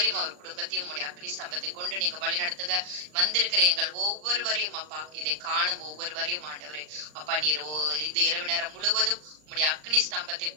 அவர் குடும்பத்தையும் உங்களுடைய அக்னி ஸ்தம்பத்தை கொண்டு நீங்க வழி நடத்துங்க. வந்திருக்கிற எங்கள் ஒவ்வொருவரையும் அப்பா இதை காணும் ஒவ்வொருவரையும் ஆண்டவரே அப்பா நீர் இது இரவு நேரம் முழுவதும் உம்முடைய அக்னி ஸ்தம்பத்தை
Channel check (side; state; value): left; late; 39 ms